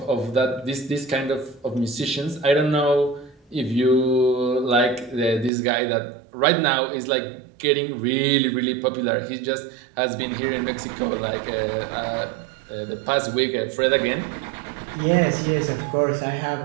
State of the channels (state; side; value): drops out; left; at 5.5 s